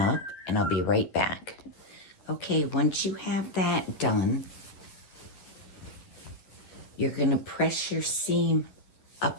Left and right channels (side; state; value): right; late; 11 ms